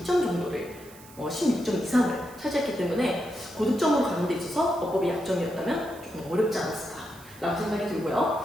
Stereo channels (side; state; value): right; noise; hiss, 21 dB below the sound